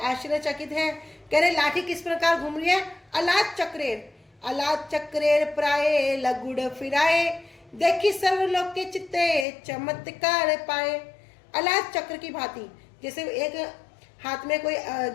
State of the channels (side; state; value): right; drops out; at 9.5 s